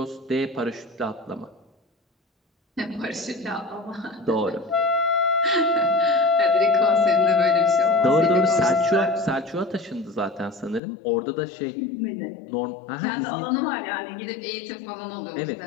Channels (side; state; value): right; drops out; at 10.8 s